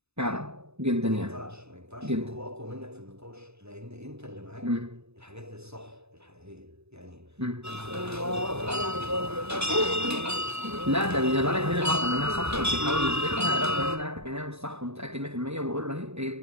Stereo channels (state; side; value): late; left; 0.80 ms